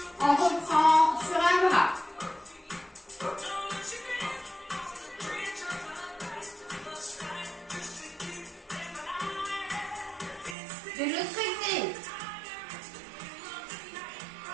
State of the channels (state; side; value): drops out; left; at 10.6 s